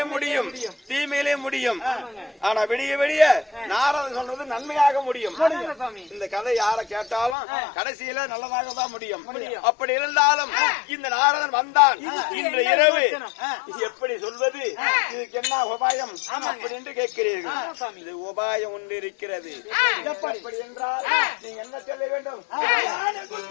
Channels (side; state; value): right; drops out; at 7.4 s